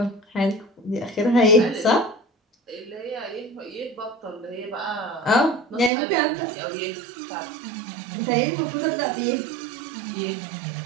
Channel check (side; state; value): left; drops out; at 5.9 s